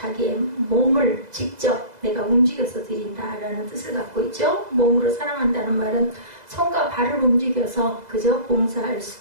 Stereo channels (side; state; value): left; late; 2.0 ms